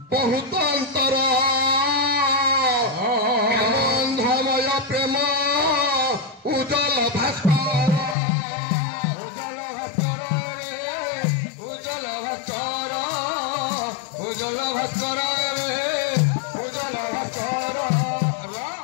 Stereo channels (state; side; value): drops out; right; at 8.2 s